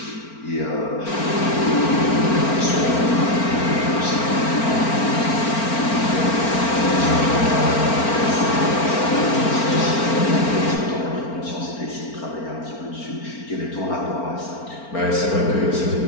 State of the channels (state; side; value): late; right; 4.4 ms